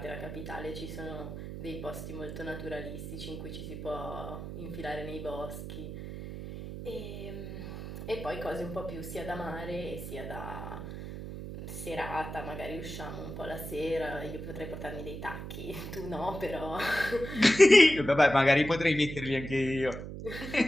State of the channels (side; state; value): right; noise; hum, 8 dB below the sound